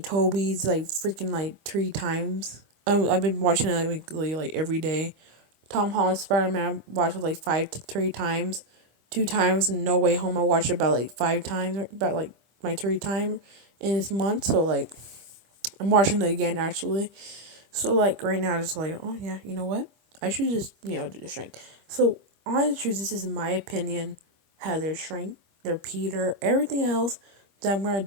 Toby's like freaking like 3 times. I've been watching it like every day. Tom Holland Spider Man I watched it like 5 to 3 times. 2 times in No Way Home I watched it about like 5 times, about like my 3 time in this month. So like I'm watching it again actually. So like right now it's like, oh yeah, you know what? I should just, do the shrink. So on the truth, this is my opinion how their shrink, their Peter, everything else that I'm gonna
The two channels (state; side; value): late; left; 25 ms